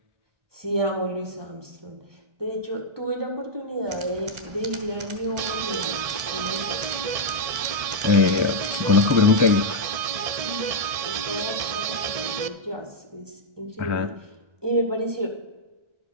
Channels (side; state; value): left; late; 1.7 ms